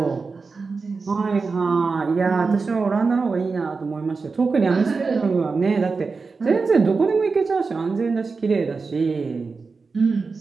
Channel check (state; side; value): quieter; left; 4.5 dB